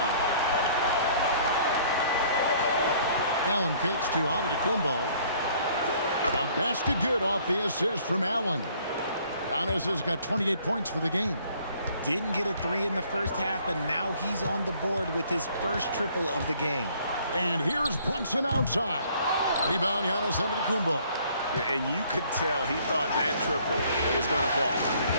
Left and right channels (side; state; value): both; inverted; correlation -0.59